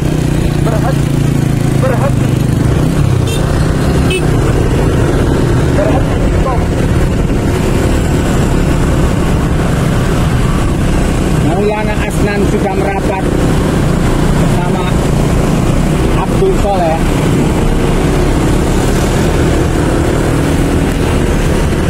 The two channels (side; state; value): both; identical; correlation 1.00